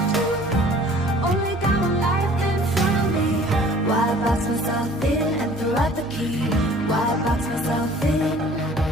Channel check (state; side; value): normal; both; correlation 0.51